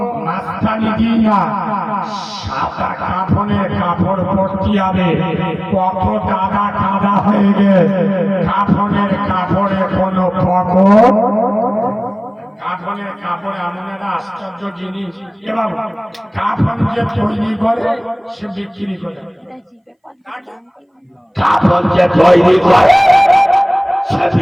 মাস্তানি দিই না, সাদা কাফনের কাপড় ভর্তি হবে, কত দাদা কাদা হয়ে গে কাফনের কাপড়ে কোনো পকর। কাফনের কাপড়ে এমন একটা আশ্চর্য জিনিস, এবার কাফন যে তৈরি করে সে বিক্রি করে, কাপড় যে তৈরি করে সে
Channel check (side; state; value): both; identical; correlation 1.00